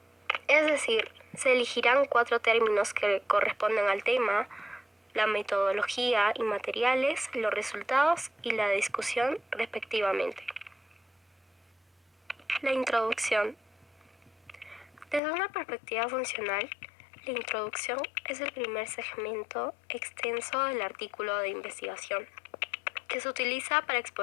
Es decir, se elegirán 4 términos que corresponden al tema, la metodología y materiales, los resultados y la discusión respectivamente. La introducción. Desde una perspectiva funcional, la introducción es el primer segmento extenso del artículo de investigación, que se utiliza para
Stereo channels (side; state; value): right; drops out; at 15.2 s